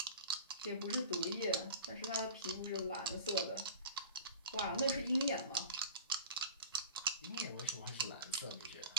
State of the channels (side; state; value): both; inverted; correlation -0.37